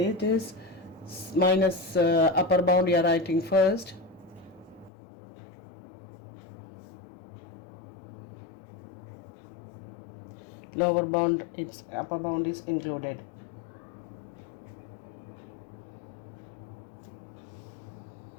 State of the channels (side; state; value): right; drops out; at 4.9 s